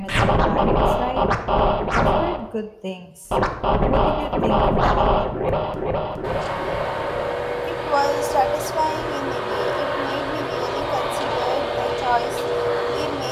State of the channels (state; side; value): identical; both; correlation 1.00